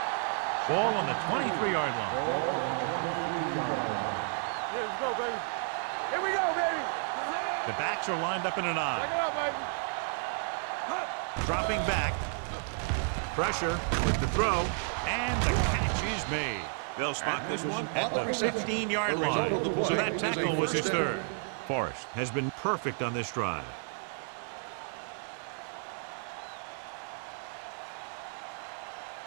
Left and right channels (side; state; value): left; silent; 56 dB below the other